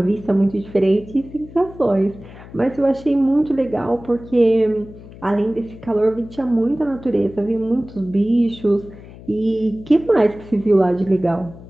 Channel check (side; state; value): left; noise; hum, 18 dB below the sound